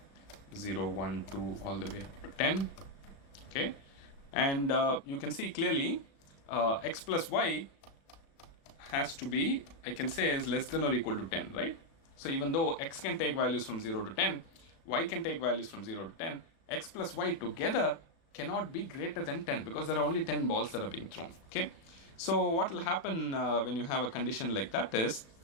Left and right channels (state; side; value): late; right; 36 ms